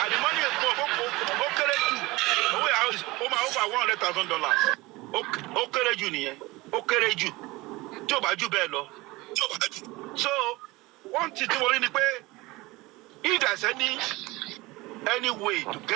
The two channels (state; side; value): quieter; left; 21.4 dB